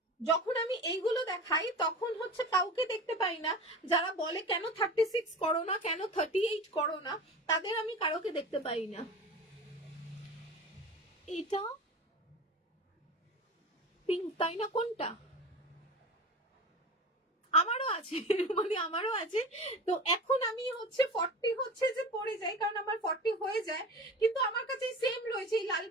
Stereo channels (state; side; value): normal; both; correlation 0.33